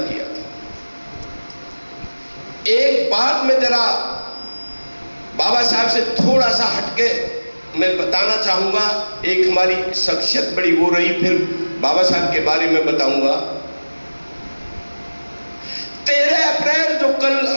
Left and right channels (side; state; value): both; inverted; correlation -1.00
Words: था। एक बात मैं जरा बाबा साहब से थोड़ा सा हटके मैं बताना चाहूंगा। एक हमारी शख्सियत बड़ी वो रही, फिर बाबा साहब के बारे में बताऊंगा। 13 अप्रैल जो कल